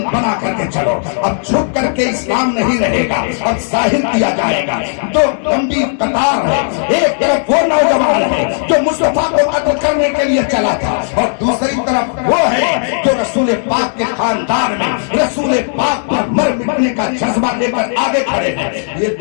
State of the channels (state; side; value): silent; right; digital silence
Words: بنا کر کے چلو، اب چھپ کر کے اسلام نہیں رہے گا، اب ظاہر کیا جائے گا۔ تو لمبی قطار ہے، ایک طرف وہ نوجوان ہے جو مصطفیٰ کو قتل کرنے کے لیے چلا تھا اور دوسری طرف وہ ہے جو رسول پاک کے خاندان میں رسول پاک پر مر مٹنے کا جذبہ لے کر آگے کھڑے ہیں۔ یہ